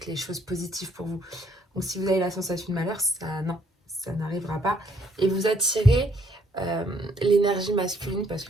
les choses positives pour vous. Donc si vous avez la sensation de malheur, ça n'arrivera pas. Et vous attirez l'énergie masculine parce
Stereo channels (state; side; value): normal; both; correlation 0.68